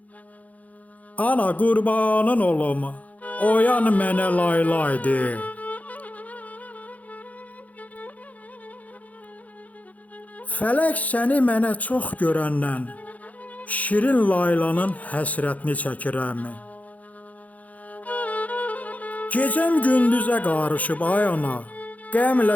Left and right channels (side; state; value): right; late; 0.073 ms